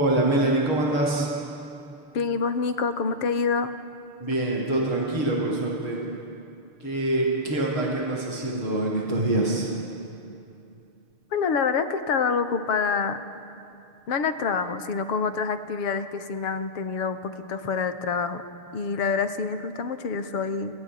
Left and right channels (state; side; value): late; right; 6.6 ms